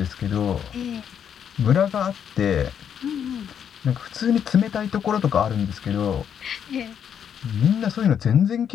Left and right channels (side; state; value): right; quieter; 8.4 dB